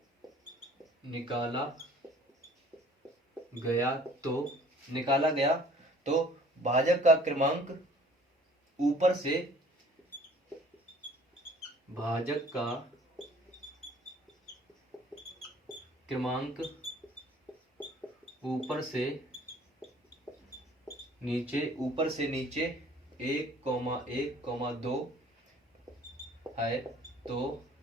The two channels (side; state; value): both; normal; correlation 0.53